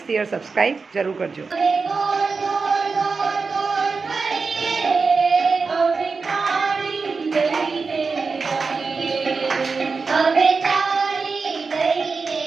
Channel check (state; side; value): quieter; left; 4.6 dB